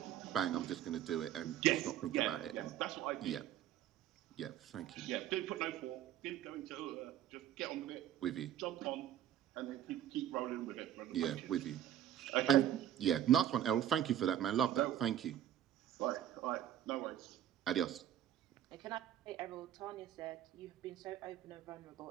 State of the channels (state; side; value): quieter; left; 11.2 dB